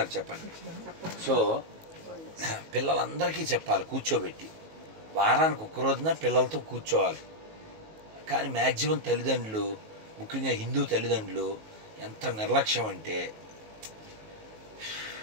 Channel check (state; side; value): late; left; 19 ms